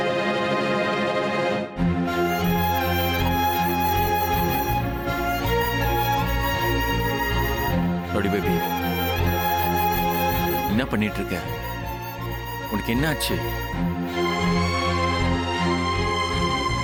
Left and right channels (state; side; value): identical; both; correlation 1.00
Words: பண்ணிட்டு இருக்க? உனக்கு என்ன ஆச்சு?